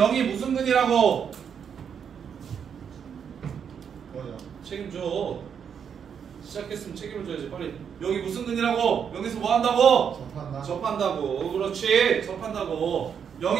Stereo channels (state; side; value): quieter; left; 7.5 dB